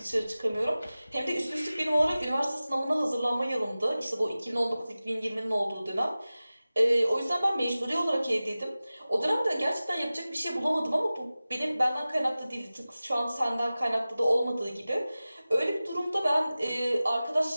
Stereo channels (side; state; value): both; inverted; correlation -0.97